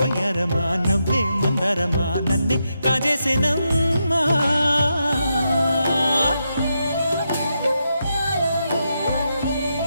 నవ్వే మందారమా నన్నే కాజేసేనమ్మా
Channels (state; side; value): inverted; both; correlation -0.84